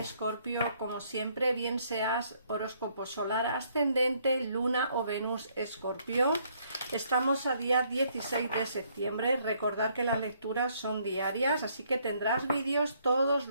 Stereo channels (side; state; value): both; inverted; correlation -0.68